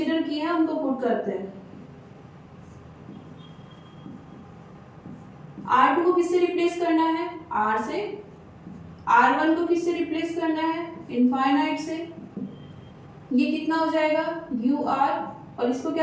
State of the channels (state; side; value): identical; both; correlation 1.00